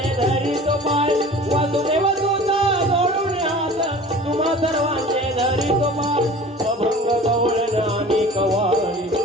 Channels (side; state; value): both; normal; correlation 0.42